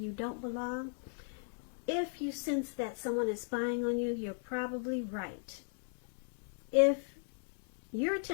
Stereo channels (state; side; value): silent; right; digital silence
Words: don't belong. If you sense that someone is spying on you, you're probably right. If you're